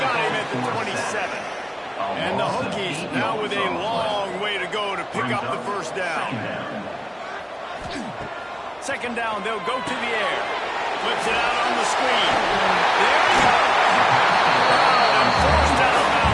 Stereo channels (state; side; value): identical; both; correlation 1.00